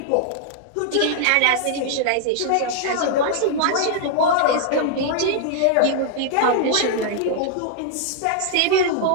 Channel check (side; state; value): both; different; correlation -0.01